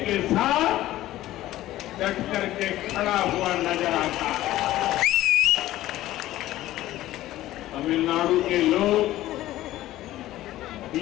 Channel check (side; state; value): right; quieter; 15.0 dB